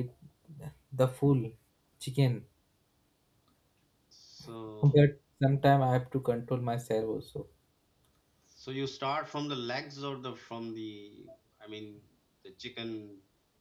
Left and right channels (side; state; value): both; identical; correlation 1.00